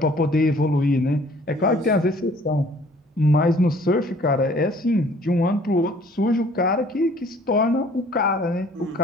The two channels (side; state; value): both; normal; correlation 0.56